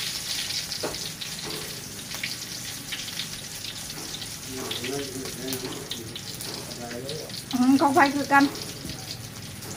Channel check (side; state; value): both; identical; correlation 1.00